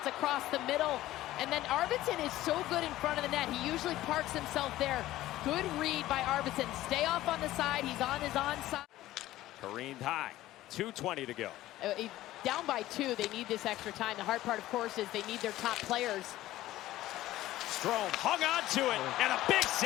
across the middle. And then Arvidsson is so good in front of the net. He usually parks himself there. Good read by Arvidsson. Stay off on the side. He's on his onside. Careened high. 2:20 to go. Down by 2. They need this extra time. The hard part, of course, is they need their top players. Strome hung on to it, and a big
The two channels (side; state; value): right; quieter; 15.4 dB